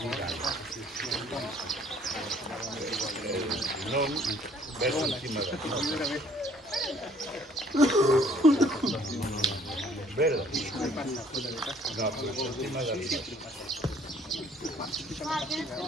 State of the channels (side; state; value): both; normal; correlation 0.59